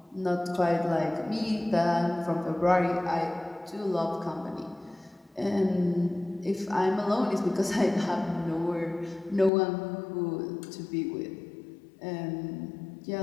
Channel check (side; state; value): right; drops out; at 9.5 s